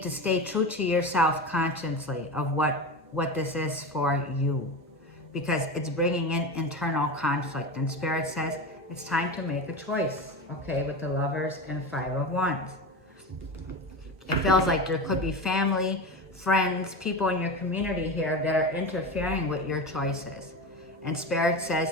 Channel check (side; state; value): both; normal; correlation 0.25